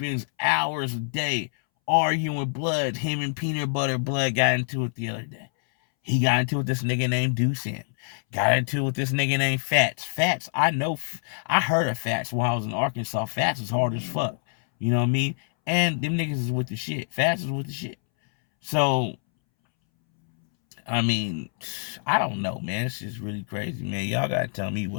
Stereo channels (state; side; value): silent; right; 61 dB below the other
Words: hours a day arguing with blood. Him and Peanut Butter Blood got into it the other day. He got into it with this nigga named Deucin. Got into it with this nigga named Fats. Fats, I know, I heard of Fats when I was in Arkansas. Fats was hard as fuck. You know what I mean? And them niggas is with the shit. Fats is with the shit. So, I mean, I don't know, man. It's just really crazy, man. Y'all gotta tell me